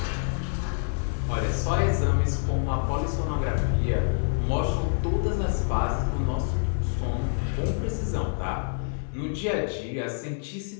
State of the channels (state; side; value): silent; right; digital silence